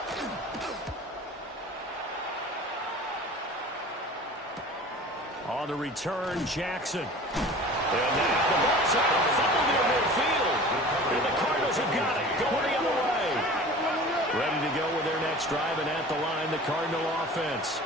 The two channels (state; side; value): normal; both; correlation 0.41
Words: On the return, Jackson. And now the ball's out. Fumble near midfield. And the Cardinals have got it. Going the other way. Ready to go with their next drive, and at the line, the Cardinal offense.